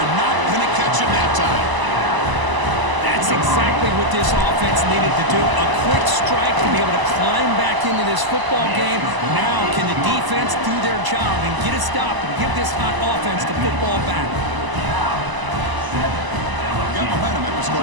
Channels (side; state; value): left; late; 1.0 ms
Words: not going to catch him that time. That's exactly what this offense needed to do. A quick strike to be able to climb back into this football game. Now can the defense do their job and get a stop and give this hot offense the football back? Got momentum after